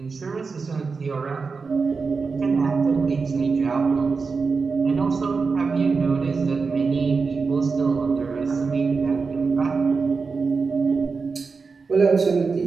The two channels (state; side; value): quieter; left; 4.7 dB